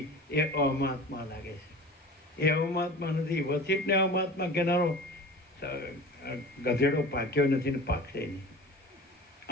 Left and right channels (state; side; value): normal; both; correlation 0.38